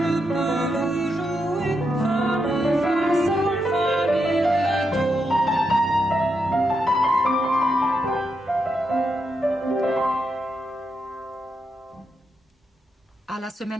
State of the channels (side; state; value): both; normal; correlation 0.83